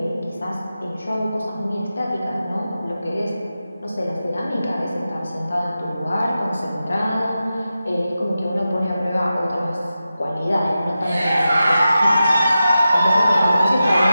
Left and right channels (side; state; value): both; inverted; correlation -0.92